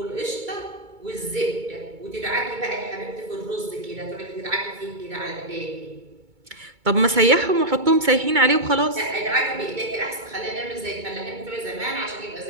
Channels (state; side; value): late; left; 2.2 ms